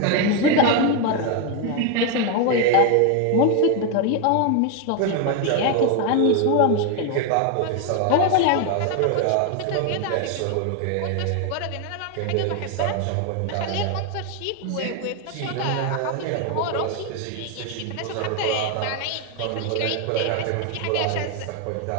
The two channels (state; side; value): different; both; correlation 0.01